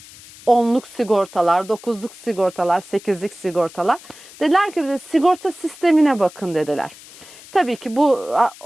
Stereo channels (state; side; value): noise; left; hiss, 20 dB below the sound